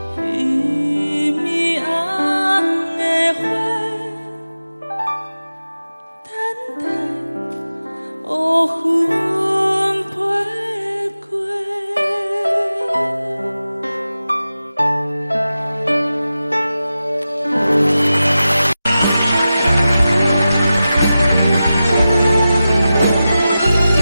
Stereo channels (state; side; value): inverted; both; correlation -0.93